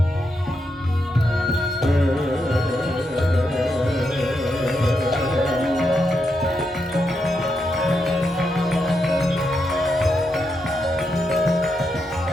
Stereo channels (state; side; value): normal; both; correlation 0.83